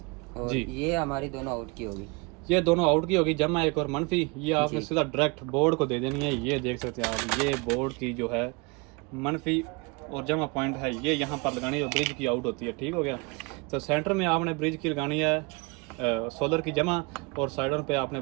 और जी, ये हमारी दोनों आउट की होगी। ये दोनों आउट की होगी, जमा एक और मनफी। ये आपने जी। सीधा डायरेक्ट बोर्ड को दे देनी है। ये देख सकते हैं आप, ये बोर्ड की जो है मनफी और जमा पॉइंट है, ये यहाँ पर लगानी है जो ब्रिज की आउट होती है। ठीक हो गया। तो सेंटर में आपने ब्रिज की लगानी है सोलर की जमा, और साइडों पे आपने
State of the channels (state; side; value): quieter; left; 28.8 dB